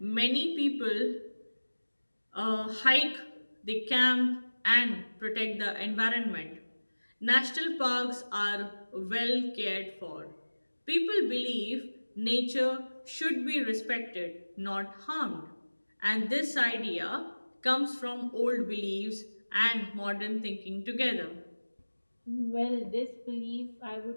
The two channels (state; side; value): inverted; both; correlation -1.00